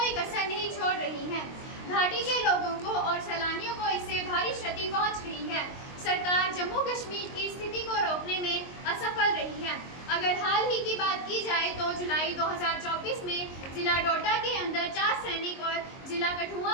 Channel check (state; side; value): late; right; 22 ms